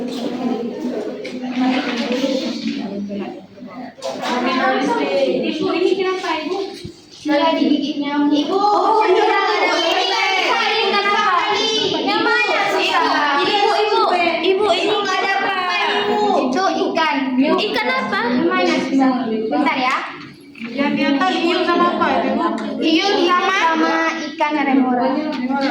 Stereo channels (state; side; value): identical; both; correlation 1.00